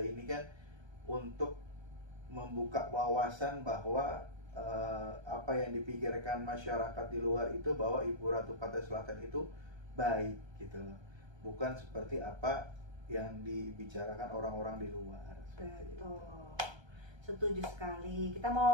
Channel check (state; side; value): late; left; 1.3 ms